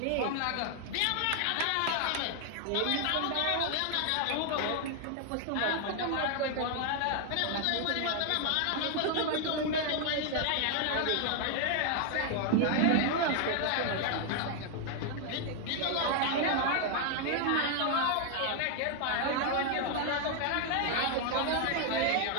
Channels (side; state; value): both; different; correlation 0.00